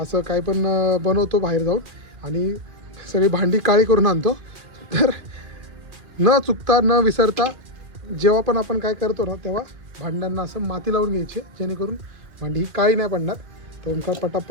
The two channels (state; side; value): late; left; 2.5 ms